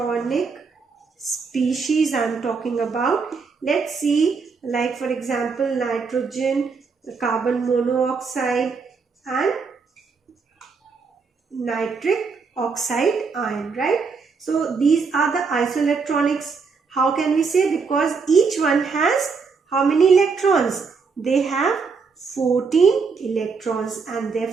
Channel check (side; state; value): left; quieter; 5.0 dB